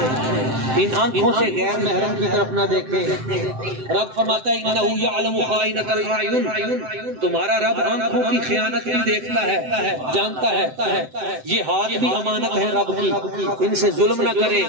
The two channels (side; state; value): left; late; 7.8 ms